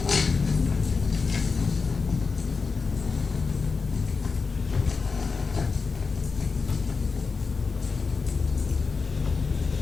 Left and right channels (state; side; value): quieter; right; 4.7 dB